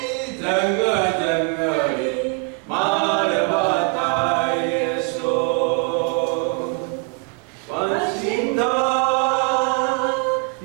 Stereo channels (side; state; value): left; quieter; 31.8 dB